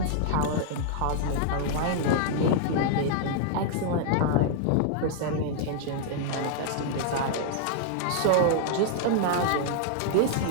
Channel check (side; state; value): both; different; correlation 0.00